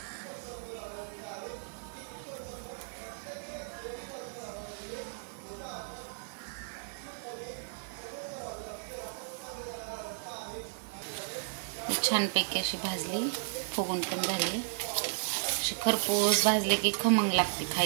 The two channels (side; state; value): left; silent; digital silence